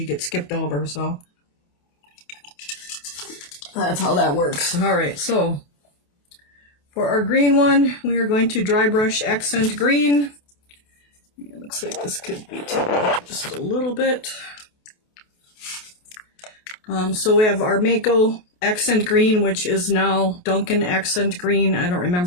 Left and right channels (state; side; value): late; right; 28 ms